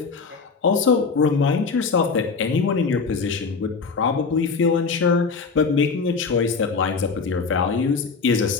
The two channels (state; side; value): quieter; right; 4.9 dB